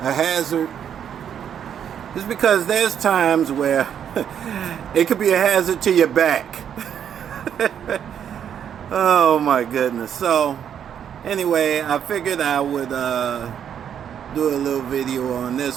hazard is because there's times where it could be a hazard to your back. Oh my goodness. So anyway, I figured I would do a little video on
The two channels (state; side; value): quieter; left; 8.8 dB